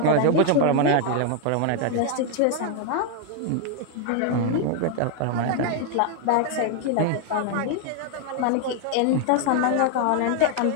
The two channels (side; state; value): both; different; correlation 0.00